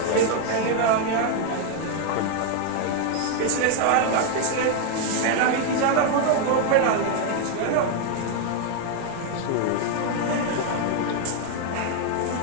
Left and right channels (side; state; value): both; different; correlation 0.01